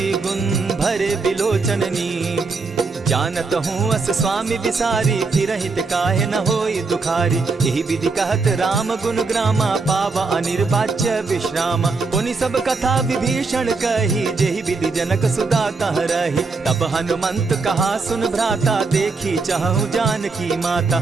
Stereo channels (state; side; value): quieter; left; 4.2 dB